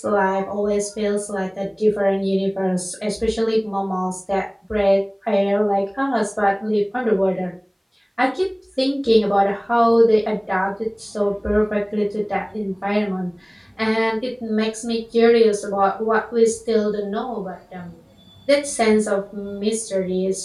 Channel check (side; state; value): both; identical; correlation 1.00